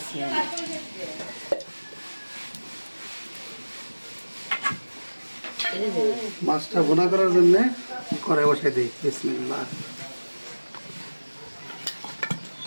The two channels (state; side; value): inverted; both; correlation -1.00